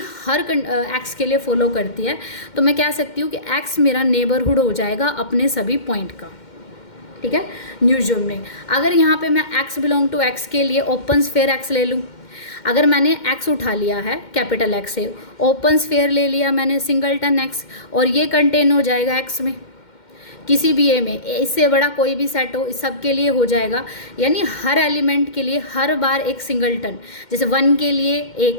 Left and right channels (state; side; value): late; right; 2.1 ms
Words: हर एक्स के लिए फॉलो करती है। तो मैं कह सकती हूँ कि एक्स मेरा नेबरहुड हो जाएगा अपने सभी पॉइंट का, ठीक है, न्यू जोन में। अगर यहाँ पे मैं एक्स बिलोंग टू एक्स के लिए ओपन स्फेयर एक्स ले लूँ, अगर मैंने एक्स उठा लिया है कैपिटल एक्स से, ओपन स्फेयर ले लिया मैंने सिंगलटन एक्स, और ये कंटेन हो जाएगा एक्स में किसी भी ए में, इससे बड़ा कोई भी सेट हो इस सब के लिए हो जाएगा। यानी हर एलिमेंट के लिए हर बार एक सिंगलटन, जैसे 1 के लिए